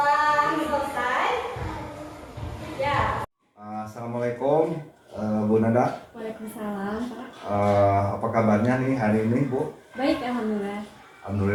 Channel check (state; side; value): identical; both; correlation 1.00